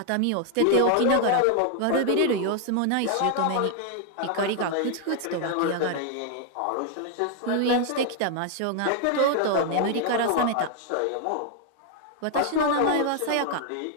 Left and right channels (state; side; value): different; both; correlation 0.00